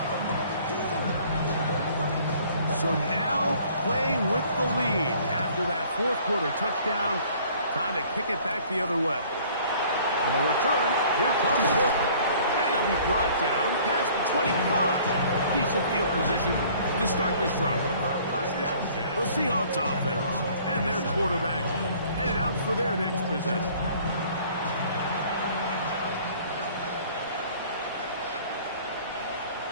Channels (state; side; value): inverted; both; correlation -0.54